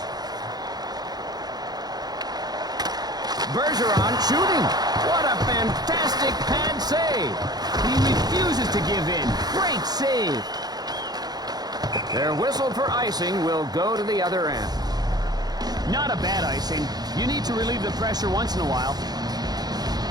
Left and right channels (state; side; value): late; left; 0.19 ms